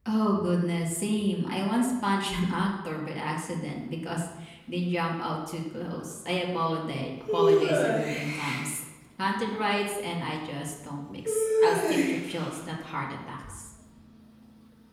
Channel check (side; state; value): both; identical; correlation 1.00